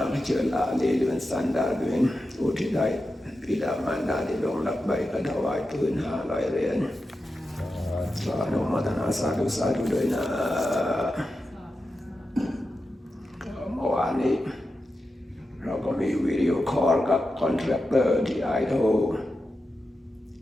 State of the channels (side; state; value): both; normal; correlation 0.90